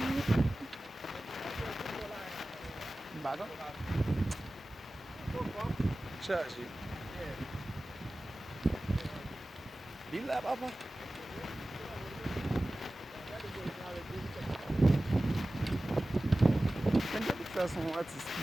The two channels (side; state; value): both; normal; correlation 0.96